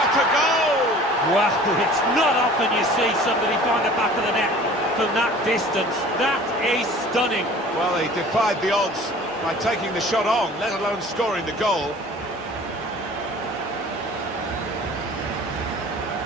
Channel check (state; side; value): normal; both; correlation 0.46